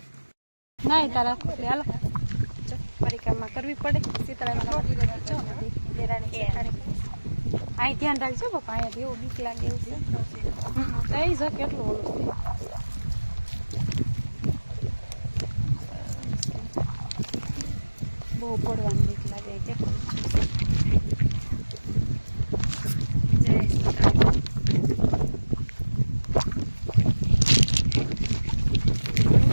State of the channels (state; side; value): inverted; both; correlation -1.00